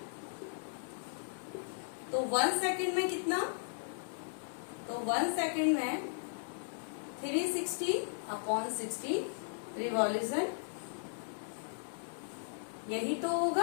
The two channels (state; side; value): silent; right; 53 dB below the other